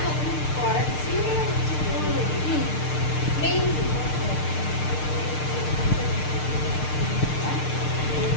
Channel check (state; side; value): late; right; 6.6 ms